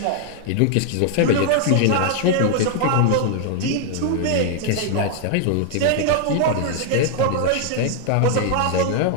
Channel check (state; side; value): different; both; correlation 0.00